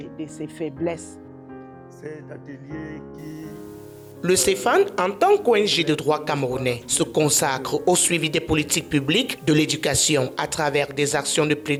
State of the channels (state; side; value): identical; both; correlation 1.00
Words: faiblesses. Cet atelier qui... Le CEFAN, en tant qu'ONG de droit camerounais, se consacre au suivi des politiques publiques de l'éducation à travers des actions de